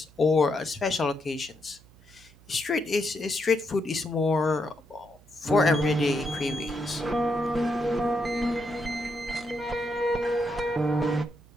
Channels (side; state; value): right; noise; hum, 26 dB below the sound